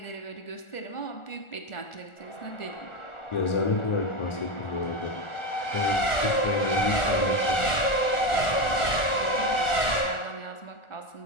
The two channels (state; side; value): late; right; 1.4 ms